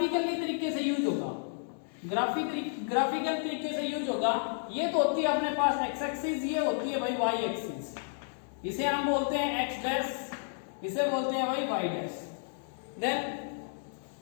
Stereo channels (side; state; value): right; silent; digital silence